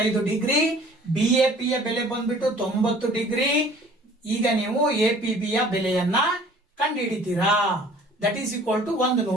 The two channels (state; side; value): normal; both; correlation 0.51